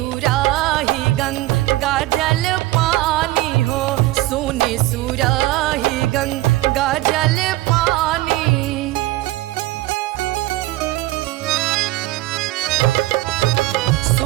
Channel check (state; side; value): quieter; left; 17.9 dB